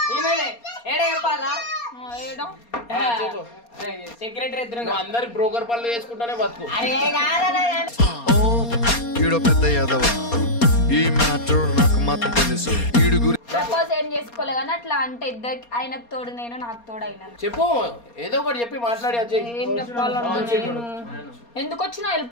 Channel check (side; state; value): right; late; 4.3 ms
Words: చెప్పాలా చెప్పు సెక్రటరీ ఎదురు అందరి బ్రోకర్ పనులు చేసుకుంటానే బతుకు. ఈడో పెద్ద యాదవ ఈ మ్యాటర్ నాకు మాత్రం తెలుసు ఈడు గురి ప్రపోజ్ ఏం చేసుకోలే కానీ అట్లా అంటే ఇద్దరికి ఆయనకు తోడు నేను నాకు తోడు అయినా చెప్పు ఏదో ఒకటి చెప్పి మాట్లాడి ఏం చెప్పాలన్నా నేను ఎందుకు వచ్చినా